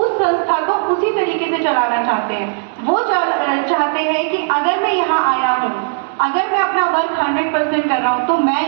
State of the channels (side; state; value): left; silent; 68 dB below the other